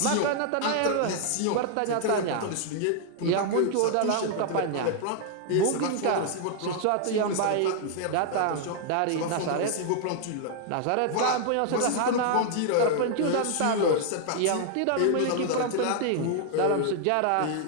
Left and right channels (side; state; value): both; different; correlation 0.00